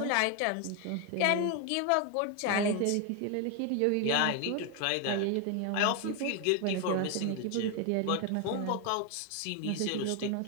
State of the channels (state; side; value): different; both; correlation 0.01